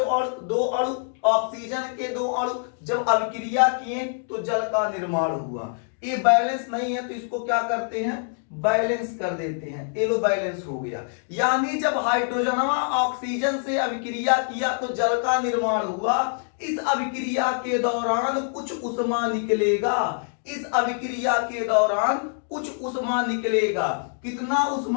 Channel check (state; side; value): silent; right; digital silence